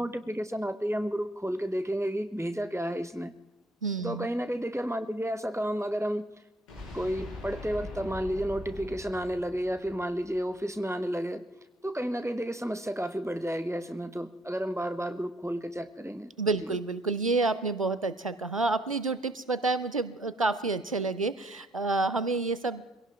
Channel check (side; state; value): both; normal; correlation 0.68